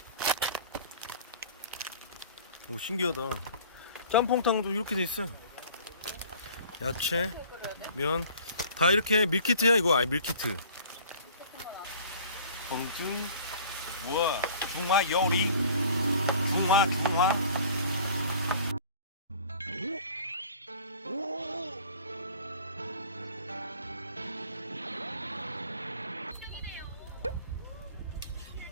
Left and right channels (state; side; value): inverted; both; correlation -0.48